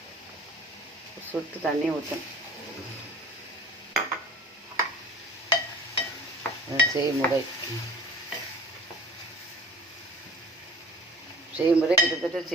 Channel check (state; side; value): normal; both; correlation 0.44